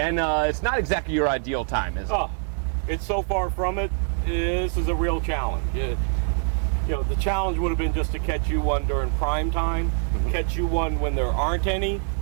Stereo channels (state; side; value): silent; left; 59 dB below the other